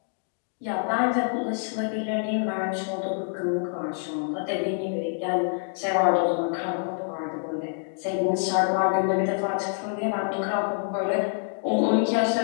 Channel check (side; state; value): right; silent; digital silence